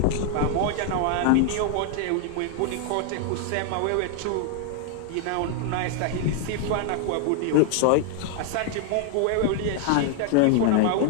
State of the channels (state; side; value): different; both; correlation 0.00